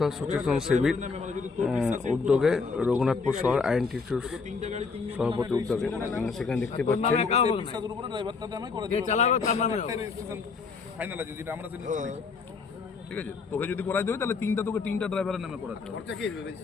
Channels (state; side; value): quieter; right; 4.8 dB